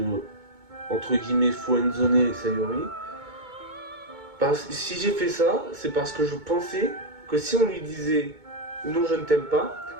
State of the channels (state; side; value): late; left; 2.2 ms